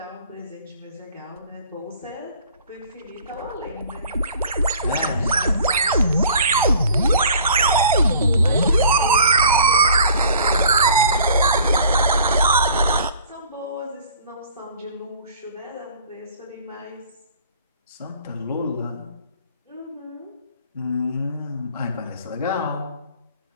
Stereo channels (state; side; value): inverted; both; correlation -0.50